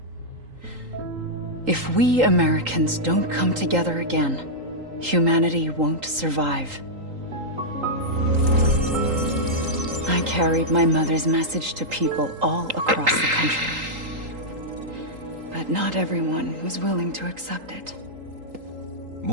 If we Americans don't come together again, humanity won't survive. I carried my mother's message to people all across the country. But not everyone was willing to accept it.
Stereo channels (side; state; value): left; late; 3.8 ms